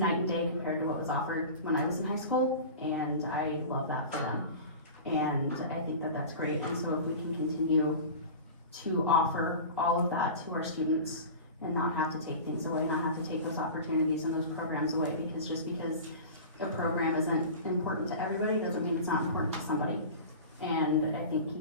and day compared to what was offered when I was in high school, and I love that for them. And I think that that's great. And so if we can continue to offer all of that to our students and not have to take things away, not have to take those opportunities and those programs away, because just because a program isn't important to everybody doesn't mean it's not important to somebody. And I think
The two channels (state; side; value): inverted; both; correlation -0.34